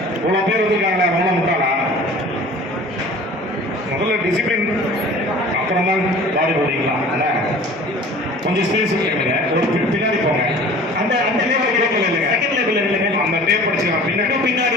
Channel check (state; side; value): normal; both; correlation 0.44